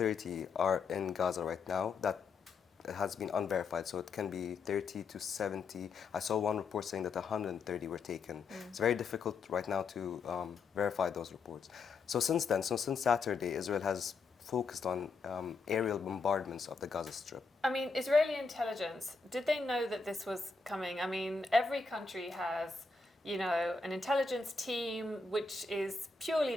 are in Gaza right now. That has been unverified, so it can be 30 to 70. I saw one report saying that 130 were taken. It's very difficult right now to verify those reports. So since Saturday, Israel has focused on aerial bombardments of the Gaza Strip. Israeli intelligence, did they know that this was coming? Every country has an intelligence team which is purely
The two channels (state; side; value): quieter; right; 4.4 dB